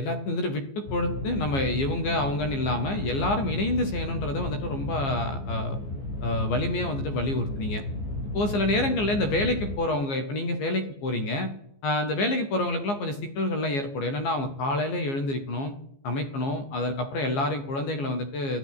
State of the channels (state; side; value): late; right; 15 ms